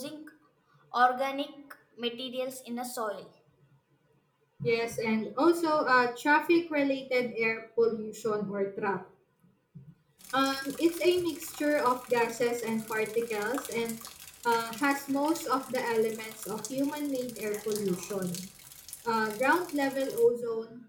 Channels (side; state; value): both; identical; correlation 1.00